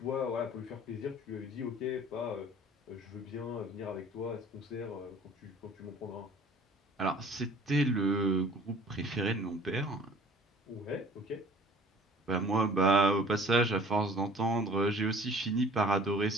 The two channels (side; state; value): both; normal; correlation 0.51